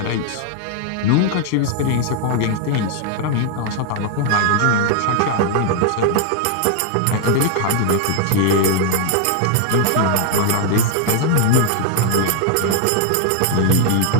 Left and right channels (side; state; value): both; different; correlation 0.00